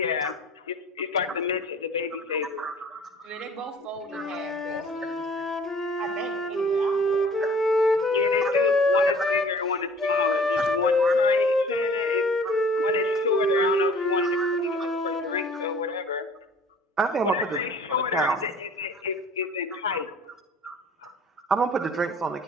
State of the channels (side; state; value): both; normal; correlation 0.50